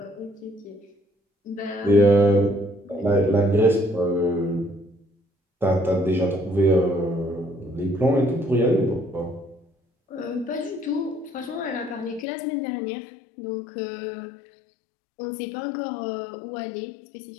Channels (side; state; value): right; drops out; at 12.2 s